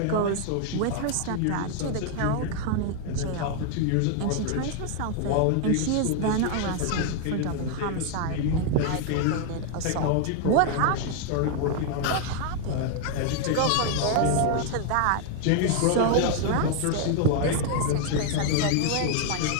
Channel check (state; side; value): different; both; correlation 0.00